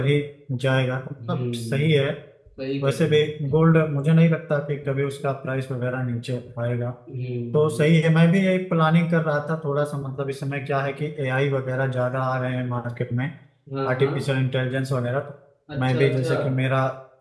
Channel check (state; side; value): identical; both; correlation 1.00